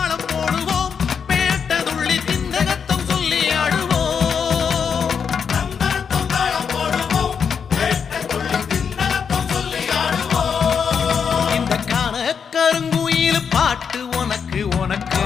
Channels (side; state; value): right; quieter; 6.6 dB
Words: போடுவோம் பேட்டதுள்ளி திந்தகத்தம் சொல்லி ஆடுவோம் தந்தரத்தம் தாளம் போடுவோம் பேட்டதுள்ளி திந்தகத்தம் சொல்லி ஆடுவோம் இந்த காண கருங்குயில் பாட்டு உனக்கு உனக்கு